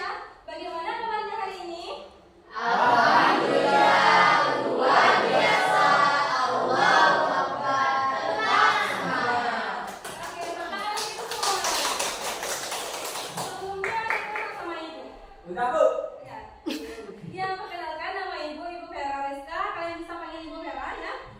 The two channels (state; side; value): identical; both; correlation 1.00